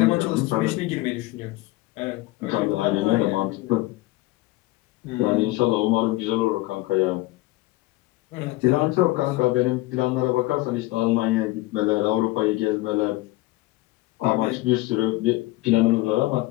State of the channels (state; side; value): quieter; right; 19.1 dB